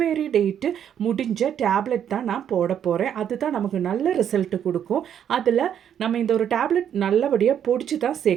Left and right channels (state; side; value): quieter; left; 9.2 dB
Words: டேட்டு முடிஞ்ச டேப்லெட் தான் நான் போட போகிறேன். அதுதான் நமக்கு நல்ல ரிசல்ட் கொடுக்கும். அதில் நம்ம இந்த ஒரு டேப்லெட் நல்லபடியாக பொடிச்சு தான்